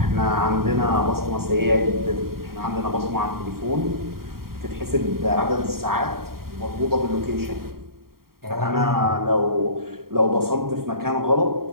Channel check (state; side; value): late; left; 0.93 ms